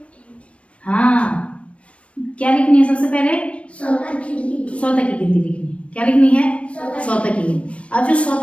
हाँ क्या लिखनी है सबसे पहले 100 तक की गिनती लिखनी है। क्या लिखनी है 100 तक की गिनती। अब जो 100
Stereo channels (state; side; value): late; right; 0.062 ms